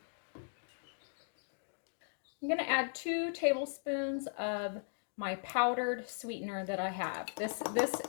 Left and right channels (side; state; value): right; silent; digital silence